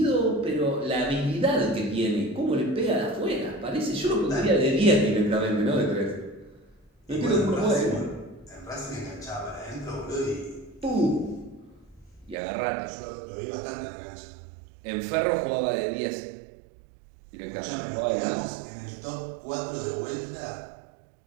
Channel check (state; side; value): drops out; left; at 12.4 s